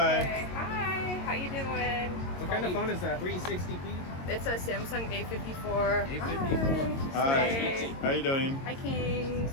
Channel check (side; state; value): right; late; 22 ms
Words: Okay. Hi. How you doing? What kind of phone is that? 360p? It's a Samsung A54. A54. Hi. How you doing? Hi, Kings.